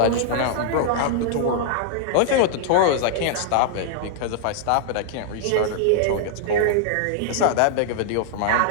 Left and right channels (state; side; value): different; both; correlation -0.01